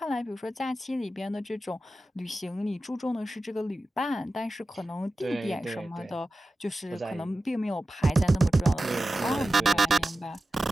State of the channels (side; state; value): both; normal; correlation 0.94